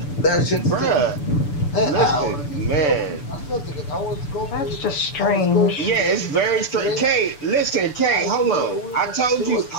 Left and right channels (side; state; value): right; late; 6.8 ms